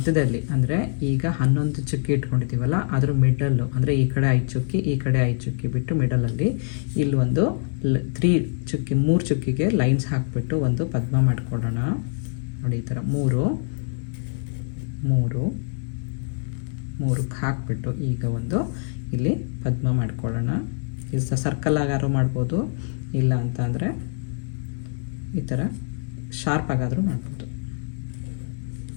ಅಂದರೆ ಈಗ 11 ಚುಕ್ಕಿ ಇಟ್ಕೊಂಡಿದ್ದೀವಲ್ಲ, ಅದ್ರ ಮಿಡಲ್ಲು ಅಂದರೆ ಈ ಕಡೆ 5 ಚುಕ್ಕಿ ಈ ಕಡೆ 5 ಚುಕ್ಕಿ ಬಿಟ್ಟು ಮಿಡಲಲ್ಲಿ ಇಲ್ಲೊಂದು 3 ಚುಕ್ಕಿಗೆ ಲೈನ್ಸ್ ಹಾಕಿಬಿಟ್ಟು ಒಂದು ಪದ್ಮ ಮಾಡ್ಕೊಳ್ಳೋಣ. ನೋಡಿ ಈ ಥರ 3 ಹಾಕಿಬಿಟ್ಟು ಈಗ ಒಂದು ಇಲ್ಲಿ ಪದ್ಮ ಮಾಡ್ಕೊಳ್ಳೋಣ. ಇದು ಸರ್ಕಲ್ ಆಗಾದ್ರೂ ಮಾಡ್ಬೋದು, ಇಲ್ಲ ಅಂತ ಅಂದರೆ ಈ ಥರ ಶಾರ್ಪ್ ಆಗಾದರೂ ಮಾಡ್ಬೋದು.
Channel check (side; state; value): right; silent; digital silence